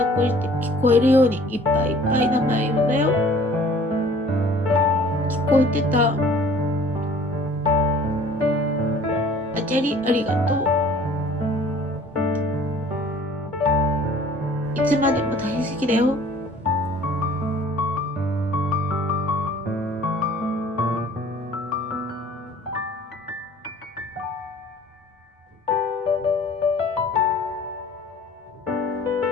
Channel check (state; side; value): normal; both; correlation 0.51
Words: っこして聞こえるようにいっぱいいっぱい名前呼んだよ。聞こえてた。アジャリありがとう。いつまでも大好きだよ。